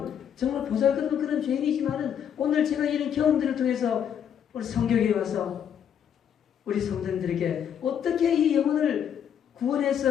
정말 보잘것없는 그런 죄인이지만은 오늘 제가 이런 경험들을 통해서 우리 성경에 와서 우리 성도님들에게 어떻게 이 영혼을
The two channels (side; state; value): right; quieter; 8.7 dB